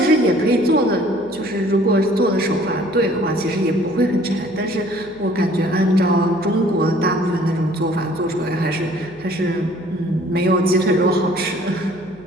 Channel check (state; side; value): noise; right; hum, 23 dB below the sound